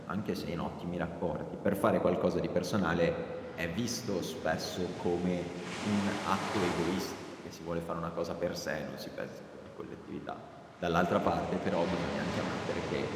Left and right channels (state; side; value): identical; both; correlation 1.00